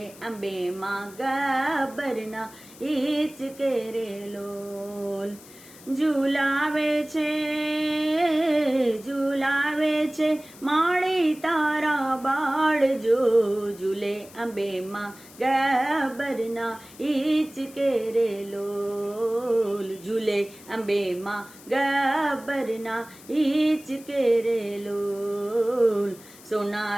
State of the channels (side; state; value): left; noise; hiss, 21 dB below the sound